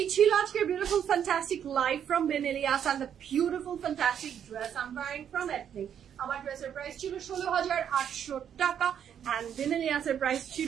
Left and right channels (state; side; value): quieter; left; 8.9 dB